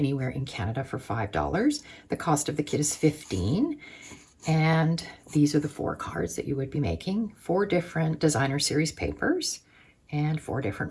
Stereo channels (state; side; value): identical; both; correlation 1.00